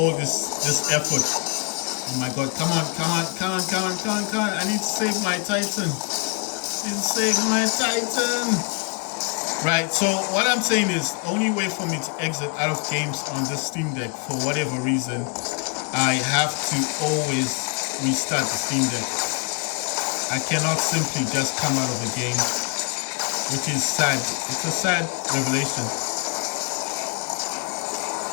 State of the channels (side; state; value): right; quieter; 31.9 dB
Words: this effort. Oh my god, come on. I need to save my Titan. Right, so what I'm saying is, the only way for me to exit out of games on this Steam Deck, for whatever reason, I have to always restart the Steam Deck. I cannot simply just come out of the game, which is sad. It's a sad revelation.